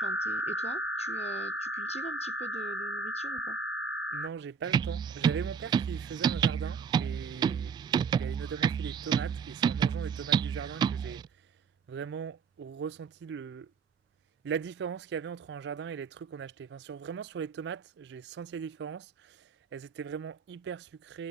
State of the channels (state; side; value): quieter; left; 5.7 dB